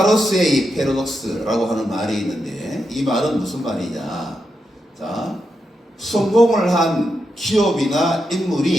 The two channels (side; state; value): both; normal; correlation 0.85